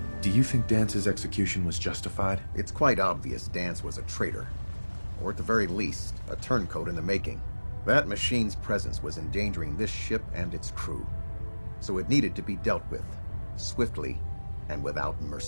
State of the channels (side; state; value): both; inverted; correlation -1.00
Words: Do you think Dance's execution was justified? It's quite obvious Dance was a traitor. Or at the very least, a turncoat in the making. That machine's presence was endangering this ship and its crew. So it needed to be dealt with, swiftly and without